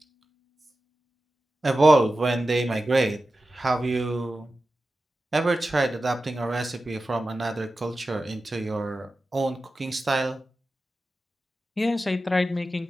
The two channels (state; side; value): normal; both; correlation 0.93